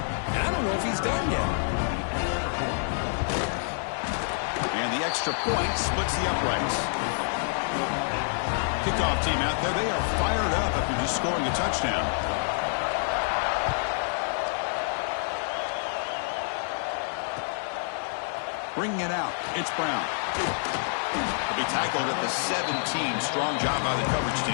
and I don't know if he's done yet. And the extra point splits the uprights. Kickoff team out there. They are fired up after just scoring a touchdown. Bringing it out, it's Brown. He'll be tackled at the 17. Strong job by the coverage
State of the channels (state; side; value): silent; right; 60 dB below the other